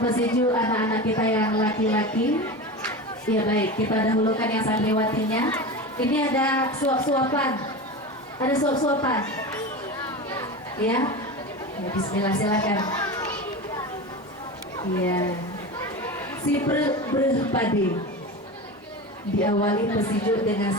anak-anak kita yang laki-laki. Ya baik, kita dahulukan yang santriwatinya. Ini ada suap-suapan, ada suap-suapan. Ya, bismillah, silakan. Ya, si berpadi diawali pesijuk dengan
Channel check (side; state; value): both; normal; correlation 0.27